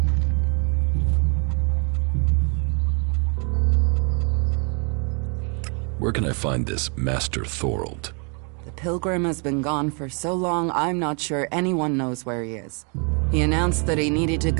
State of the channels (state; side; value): quieter; left; 37.4 dB